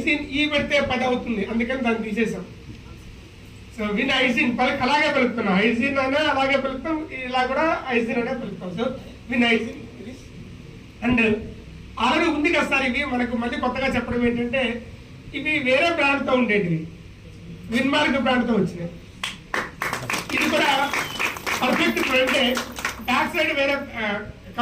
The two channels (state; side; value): identical; both; correlation 1.00